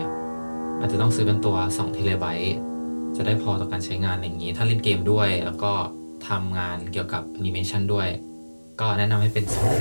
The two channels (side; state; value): both; inverted; correlation -1.00